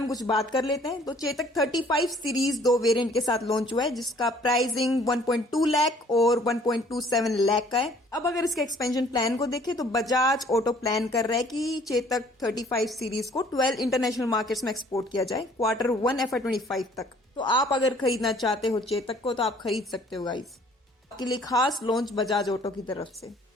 में कुछ बात कर लेते हैं। तो चेतक 35 सीरीज 2 वेरिएंट के साथ लॉन्च हुआ है, जिसका प्राइसिंग 1.2 लाख और 1.27 लाख का है। अब अगर इसके एक्सपेंशन प्लान को देखें तो बजाज ऑटो प्लान कर रहा है कि चेतक 35 सीरीज को 12 इंटरनेशनल मार्केट्स में एक्सपोर्ट किया जाए Q1 FY25 तक। तो आप अगर खरीदना चाहते हो चेतक को तो आप खरीद सकते हो गाइस। आपके लिए खास लॉन्च बजाज ऑटो की तरफ से।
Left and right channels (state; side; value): normal; both; correlation 0.57